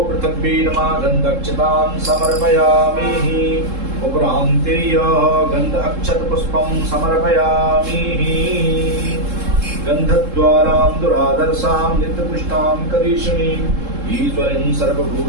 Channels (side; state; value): left; late; 3.7 ms